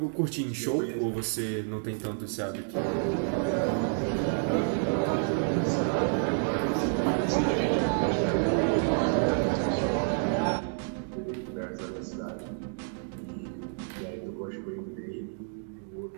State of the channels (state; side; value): silent; left; 58 dB below the other